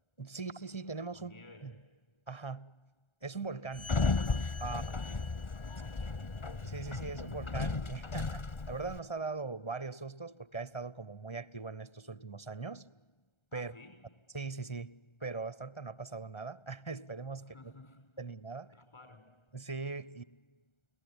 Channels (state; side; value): late; right; 1.3 ms